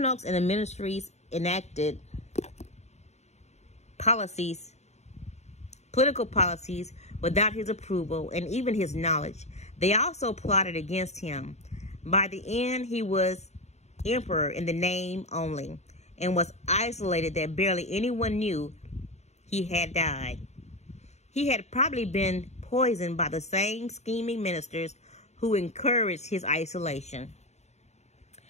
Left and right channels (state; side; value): late; right; 0.32 ms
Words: and the ministries enacted political policies without his approval and even his knowledge. They also plotted against him. By the end, he was emperor in the name only and was isolated that barely anyone knew he had died. He had probably been poisoned by the same scheming ministers who encouraged his isolation.